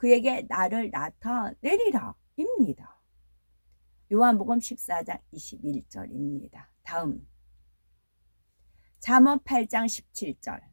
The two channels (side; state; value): both; inverted; correlation -1.00